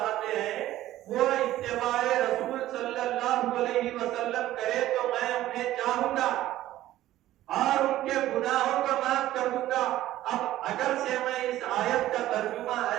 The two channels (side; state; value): left; quieter; 14.4 dB